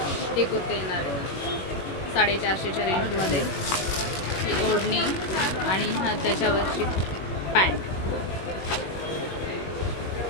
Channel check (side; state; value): right; late; 21 ms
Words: ही कुर्ती येणार आहे. 450च्या रेंजमध्ये ही ओढणी आणि हा त्याच्यावरची पॅन्ट.